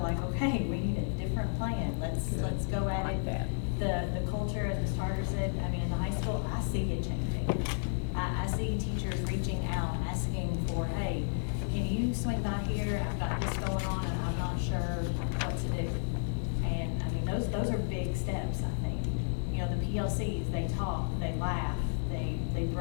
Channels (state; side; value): silent; right; digital silence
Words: okay, we need a different plan. Let's go at it. The culture, as Ms. Tarter said, I mean, in the high school, I see it changing. I see teachers reaching out, asking for, hey, can you swing by here? I've got this going on and I'm not sure what to do. And I mean, those are big steps, I think. The PLCs, they talk, they laugh, they